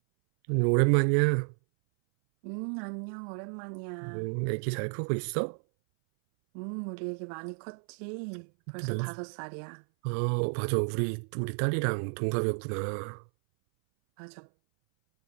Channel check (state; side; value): silent; left; 57 dB below the other